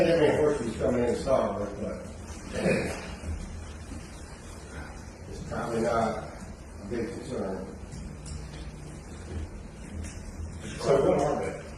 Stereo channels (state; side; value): identical; both; correlation 1.00